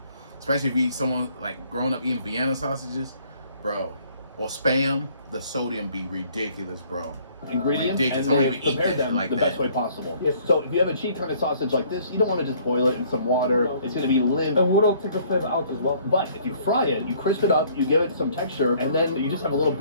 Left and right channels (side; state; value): both; inverted; correlation -0.60